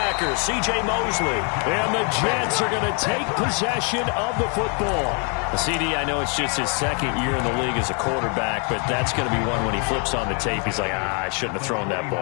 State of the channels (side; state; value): right; quieter; 37.6 dB